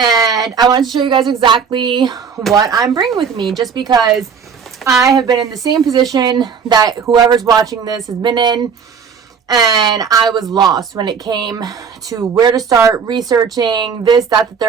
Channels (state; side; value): quieter; left; 6.4 dB